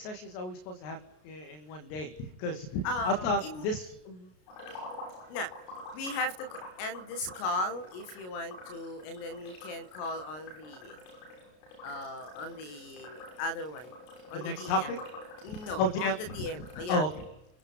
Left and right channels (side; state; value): right; late; 33 ms